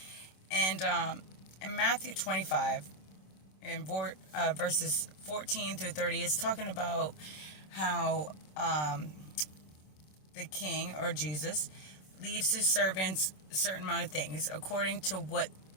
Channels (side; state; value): right; late; 26 ms